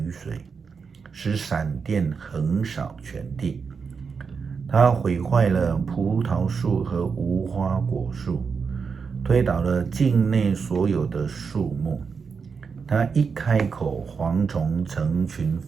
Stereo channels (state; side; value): quieter; left; 5.6 dB